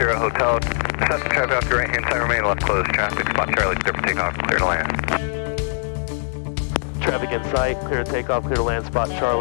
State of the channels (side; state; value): right; silent; digital silence